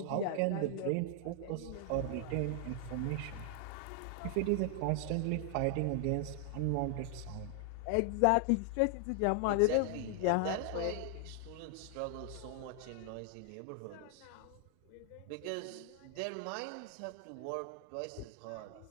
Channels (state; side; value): different; both; correlation 0.00